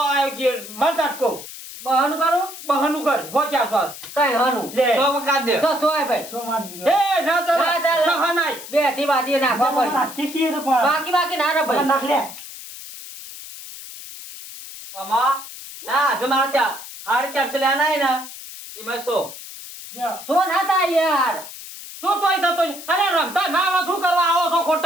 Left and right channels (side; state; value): left; noise; hiss, 13 dB below the sound